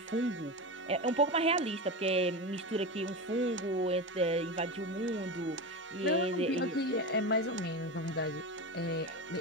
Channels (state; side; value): normal; both; correlation 0.21